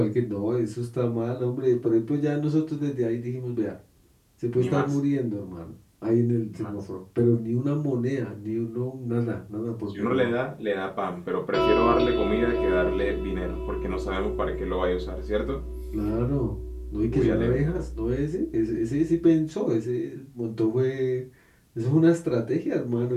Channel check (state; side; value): identical; both; correlation 1.00